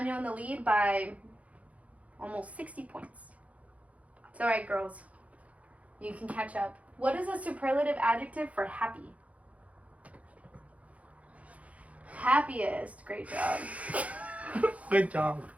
in the lead by almost 60 points. It's all right, girls. You can catch up. What is a superlative adjective for happy? Happiest. Great job. Good job.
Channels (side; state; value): left; late; 0.067 ms